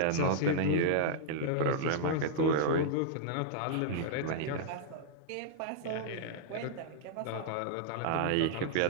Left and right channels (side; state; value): both; different; correlation -0.01